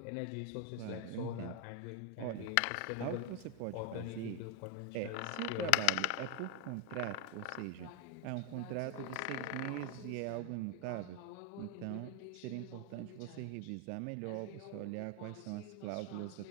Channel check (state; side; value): different; both; correlation 0.01